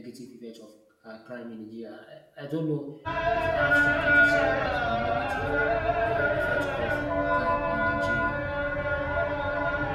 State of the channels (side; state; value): both; identical; correlation 1.00